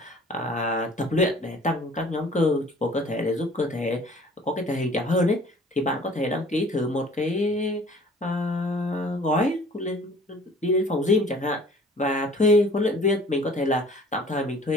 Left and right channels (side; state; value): both; normal; correlation 0.51